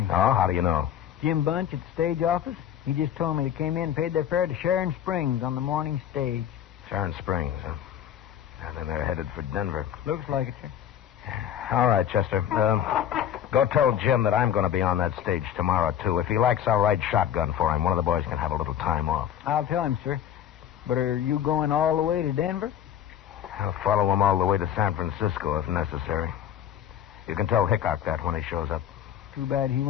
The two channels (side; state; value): right; quieter; 10.0 dB